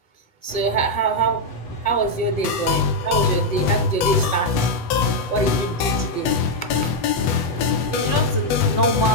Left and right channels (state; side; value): late; right; 7.9 ms